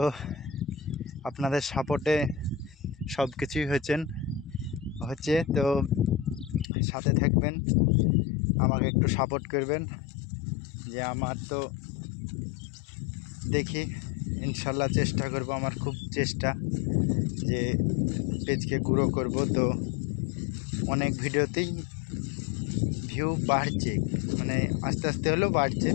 আপনাদের সাপোর্টে সব কিছুই হচ্ছে। তো সাথে থাকবেন, আমাকে একটু সাপোর্ট করবেন। যে আমার তো দেখি ইনশাল্লাহ চেষ্টা করব, আমার খুব চেষ্টা যে পেজকে গ্রো করব। তো অনেক ভিডিওতেই ভিউ বাড়ছে, মানে আস্তে আস্তে হলেও বাড়ছে।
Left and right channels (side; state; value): right; drops out; at 6.7 s